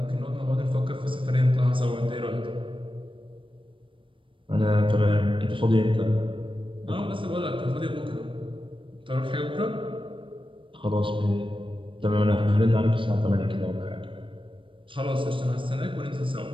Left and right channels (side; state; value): left; late; 0.25 ms